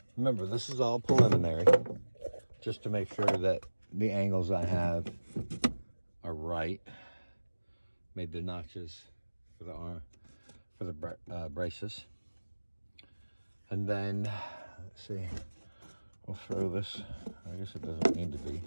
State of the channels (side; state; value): both; inverted; correlation -1.00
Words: Remember, this is all preliminary, just to make sure that the angles I have are right. Made the notches for the arm, for the braces. And then, let's see, we'll throw this, I guess it doesn't need to be.